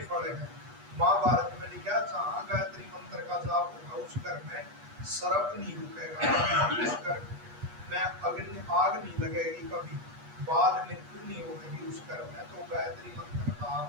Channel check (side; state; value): left; late; 8.3 ms